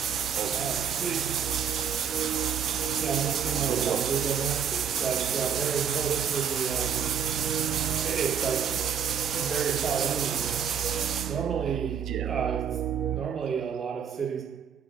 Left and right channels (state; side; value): quieter; left; 7.6 dB